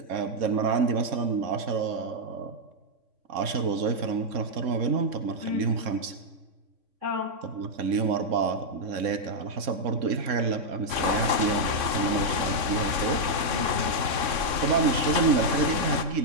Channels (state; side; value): late; left; 3.6 ms